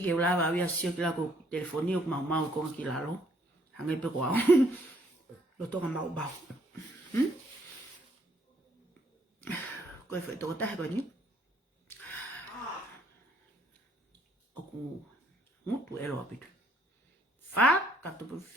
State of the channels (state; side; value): normal; both; correlation 0.66